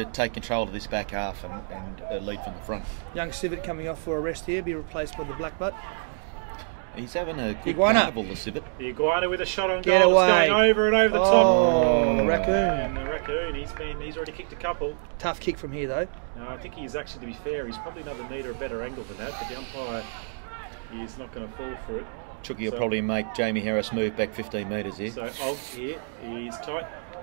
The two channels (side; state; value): left; silent; digital silence